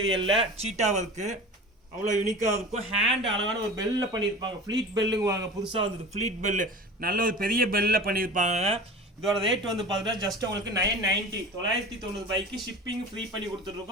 சீட்டா வர்க். அவ்வளோ யூனிக்கா இருக்கும். ஹேண்ட் அழகான ஒரு பெல்ல பண்ணியிருப்பாங்க. ஃப்ளீட் பெல்லுங்குவாங்க. புதுசாக வந்தது ஃப்ளீட் பெல்லு. நல்ல ஒரு பெரிய பெல்ல பண்ணியிருப்பாங்க. இதோட ரேட் வந்து பார்த்தீங்கன்னா ஜஸ்ட் உங்களுக்கு 990 990 ரூபாய்க்கு ஷிப்பிங் ஃப்ரீ பண்ணி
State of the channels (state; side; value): normal; both; correlation 0.36